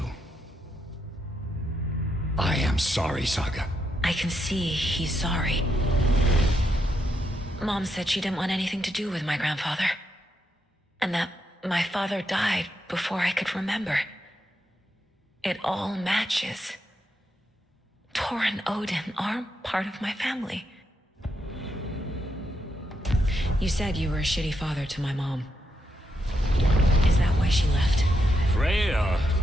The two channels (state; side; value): normal; both; correlation 0.81